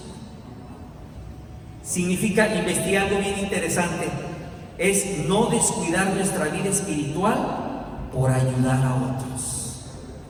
Significa investigar algo bien interesante. Es no descuidar nuestra vida espiritual por ayudar a otros.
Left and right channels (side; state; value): both; identical; correlation 1.00